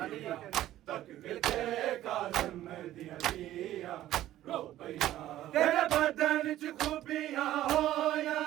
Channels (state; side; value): quieter; left; 13.7 dB